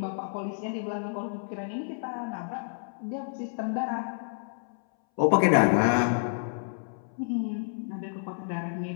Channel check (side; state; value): right; silent; 58 dB below the other